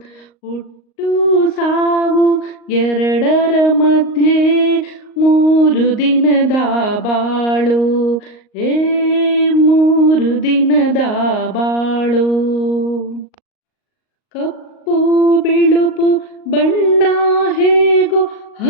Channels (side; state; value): right; late; 38 ms